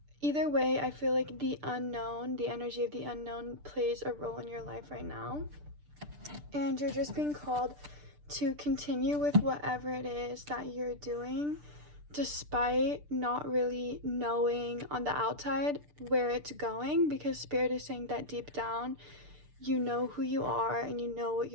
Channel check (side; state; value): left; late; 6.8 ms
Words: Either way, I feel like the unknown, the energy of the unknown plays a role in your life right now. And you're just being called to continue with whatever it is that you're doing, despite not really knowing on the outside where it's going, because Spirit is saying that deep down, you know who you are and you know what